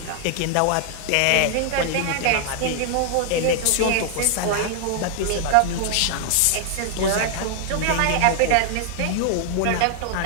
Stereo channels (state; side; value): different; both; correlation 0.00